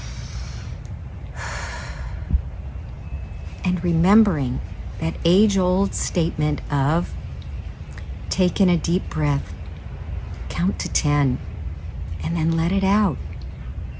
and remembering that age-old statement of take in a deep breath, count to 10, and then let it out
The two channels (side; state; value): both; identical; correlation 1.00